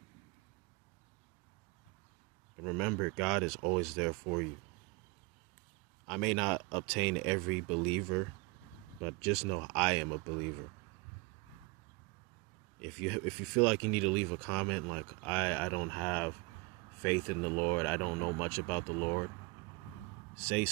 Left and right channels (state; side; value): quieter; left; 27.0 dB